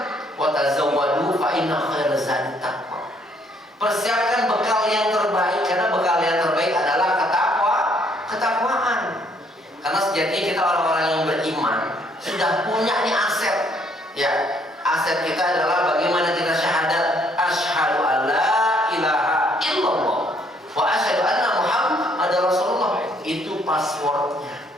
"Wa tazawwadu fa inna khairaz zadi taqwa." Persiapkan bekal yang terbaik, karena bekal yang terbaik adalah ketakwaan. Karena sejatinya kita orang-orang yang beriman sudah punya nih aset. Ya, aset kita adalah bagaimana kita syahadat asyhadu alla ilaha illallah wa asyhadu anna muhammadar rasulullah. Itu passwordnya,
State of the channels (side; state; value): both; normal; correlation 0.66